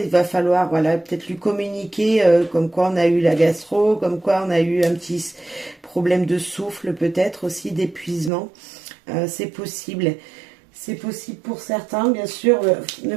va falloir, voilà, peut-être lui communiquer comme quoi on a eu la gastro, comme quoi on a eu un petit problème de souffle, peut-être aussi d'épuisement. C'est possible. C'est possible pour certains, bien sûr. Ne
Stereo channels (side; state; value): left; drops out; at 8.3 s